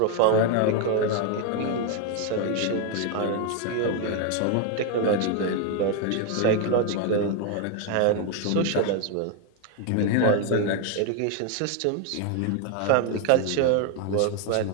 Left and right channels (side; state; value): both; different; correlation 0.01